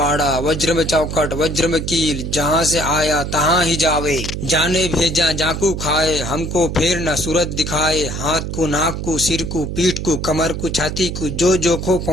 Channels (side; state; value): right; noise; hum, 5 dB below the sound